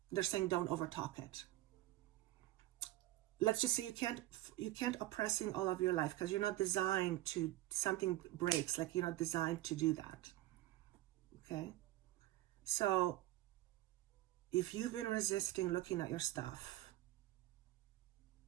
they're saying don't overtalk it. Let's just say you can't oppressing all of your life because you're not designed to, something breaks, like you're not designed to do that. Okay? So if you've been resisting looking at your stuff,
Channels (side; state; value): left; quieter; 16.1 dB